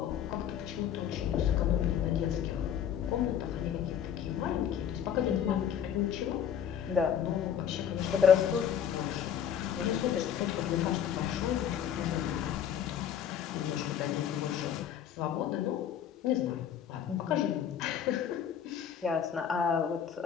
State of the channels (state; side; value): quieter; right; 9.0 dB